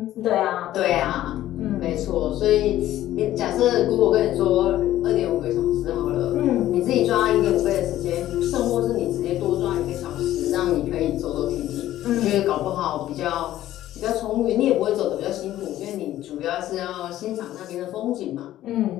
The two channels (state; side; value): quieter; right; 13.6 dB